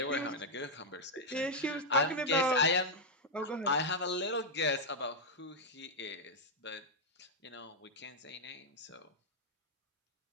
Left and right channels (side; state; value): both; normal; correlation -0.03